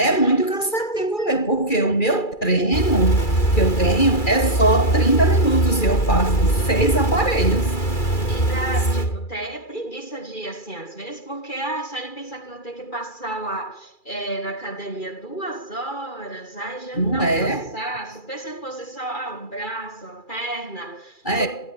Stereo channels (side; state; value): right; late; 2.3 ms